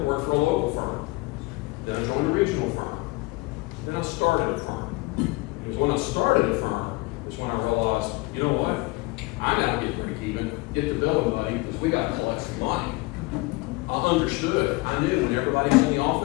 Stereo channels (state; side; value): quieter; right; 23.2 dB